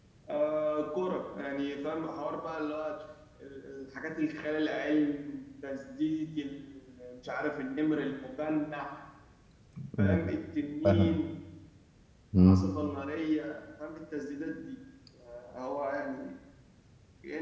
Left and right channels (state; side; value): identical; both; correlation 1.00